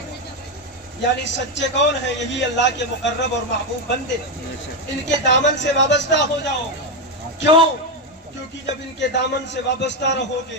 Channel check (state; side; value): normal; both; correlation 0.08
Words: यानी सच्चे कौन है? यही अल्लाह के मुकर्रब और महबूब बंदे। इनके दामन से वाबस्ता हो जाओ। क्यों? क्योंकि जब इनके दामन से वाबस्ता